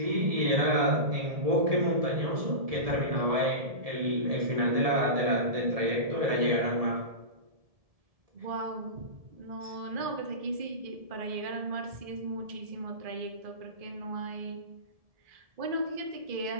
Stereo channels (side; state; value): left; late; 1.7 ms